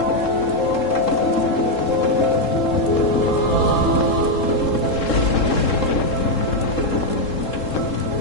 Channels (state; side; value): late; right; 3.7 ms